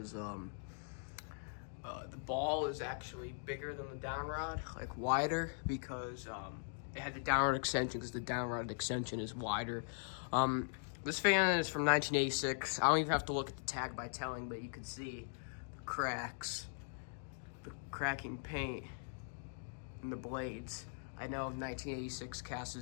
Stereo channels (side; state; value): right; silent; digital silence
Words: the ball is actually bigger than the down rod, like wider, because it had the down rod extension because the down rod extension is wider. This fan is from 1986. I don't even have to look at the tag by telling, but you can see the cracks, the cracking paint in the blades. I know 1986